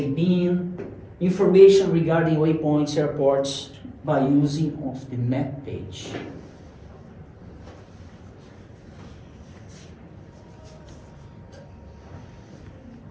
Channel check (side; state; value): both; identical; correlation 1.00